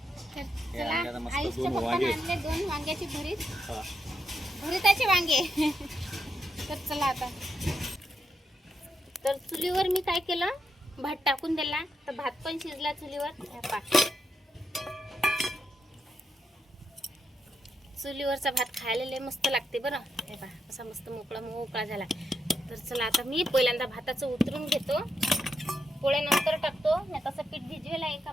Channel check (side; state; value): both; normal; correlation 0.83